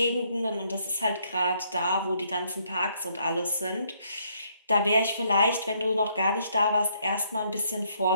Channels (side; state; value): both; inverted; correlation -0.70